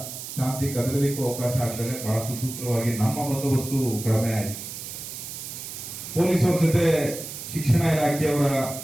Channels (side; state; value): right; noise; hiss, 9 dB below the sound